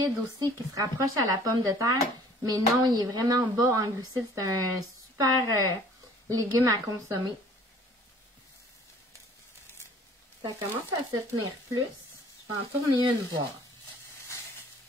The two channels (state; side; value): normal; both; correlation 0.53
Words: aussi, qui se rapproche à la pomme de terre. Mais non, il est vraiment bas en glucides. C'est un super légume à consommer. Ça commence à se tenir plus. Je vais en tourner une voir.